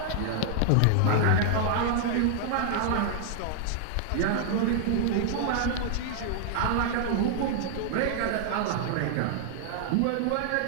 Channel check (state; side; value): different; both; correlation 0.00